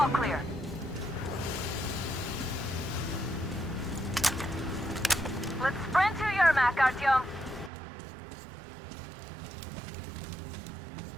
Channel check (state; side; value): drops out; left; at 7.7 s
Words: All clear. Let's sprint to Yermak, Artyom.